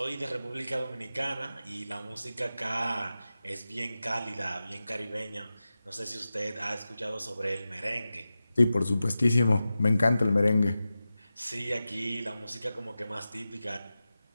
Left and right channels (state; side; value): inverted; both; correlation -0.94